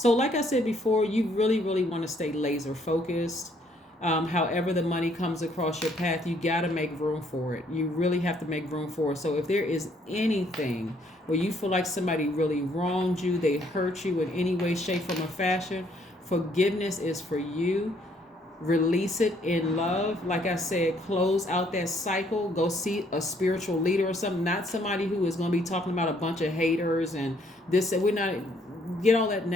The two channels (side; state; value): both; normal; correlation 0.67